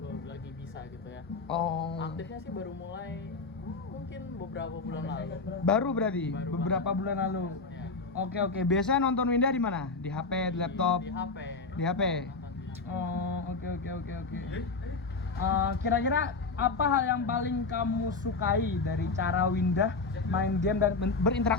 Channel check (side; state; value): right; quieter; 4.1 dB